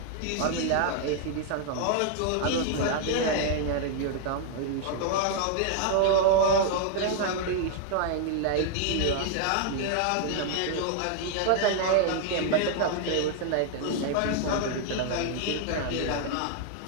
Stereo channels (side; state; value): both; different; correlation 0.00